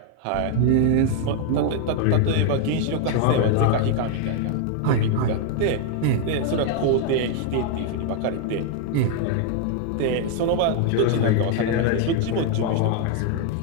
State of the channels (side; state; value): both; different; correlation 0.00